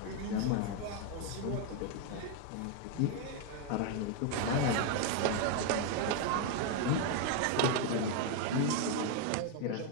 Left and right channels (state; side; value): different; both; correlation 0.01